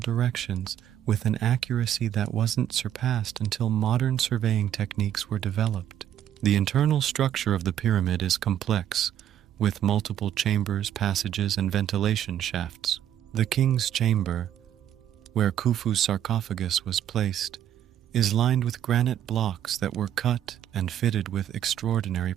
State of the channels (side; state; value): left; quieter; 10.7 dB